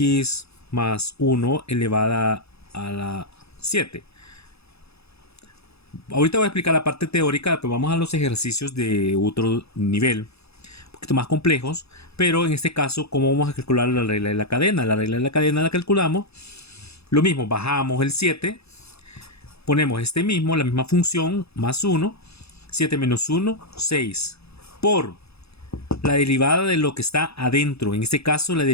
más 1 elevada a la 7. Ahorita voy a explicar la parte teórica, pero vamos a los ejercicios de otro nivel, un poquito más complejos, pero en este caso, ¿cómo vamos a calcular la regla de la cadena? La regla de la cadena la calculamos, lo mismo, bajamos el 7, ponemos la misma función, más 1, 7 menos 1, 6, por la derivada de lo que está adentro, en este caso la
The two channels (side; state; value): right; late; 0.79 ms